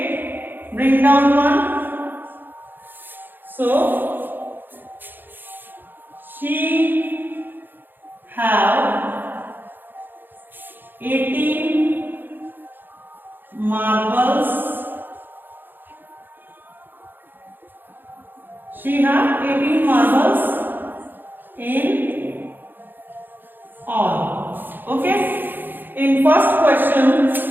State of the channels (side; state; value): left; late; 0.093 ms